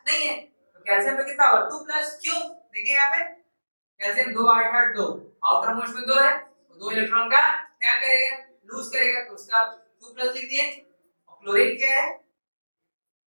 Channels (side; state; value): both; inverted; correlation -1.00